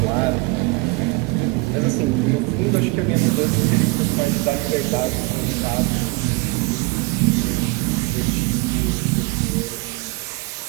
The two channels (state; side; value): quieter; left; 25.3 dB